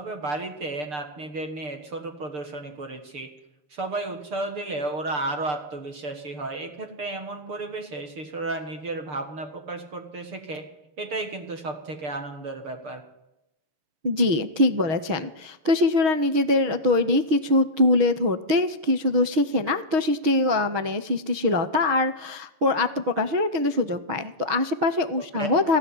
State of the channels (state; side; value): late; left; 6.3 ms